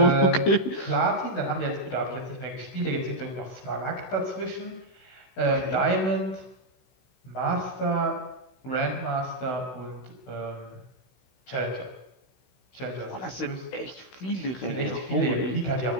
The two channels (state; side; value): late; right; 16 ms